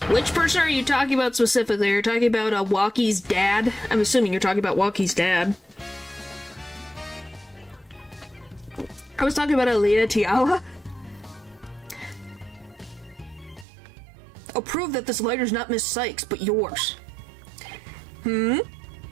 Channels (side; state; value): left; drops out; at 13.7 s